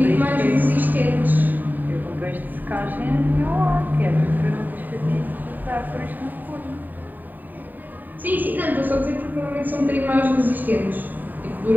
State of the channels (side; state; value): left; late; 0.088 ms